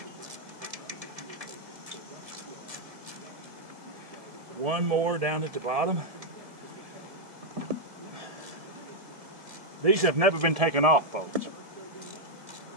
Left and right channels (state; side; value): late; left; 1.7 ms